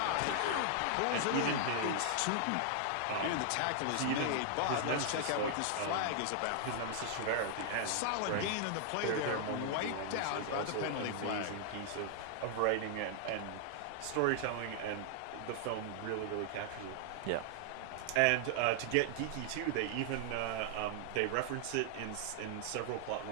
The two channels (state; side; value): different; both; correlation 0.00